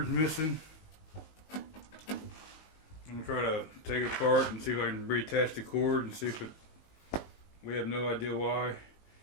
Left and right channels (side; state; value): right; late; 19 ms